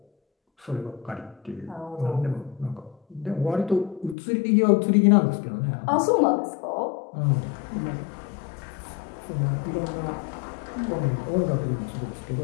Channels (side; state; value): right; drops out; at 4.2 s